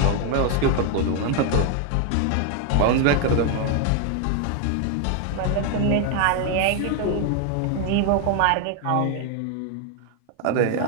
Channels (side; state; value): both; different; correlation 0.01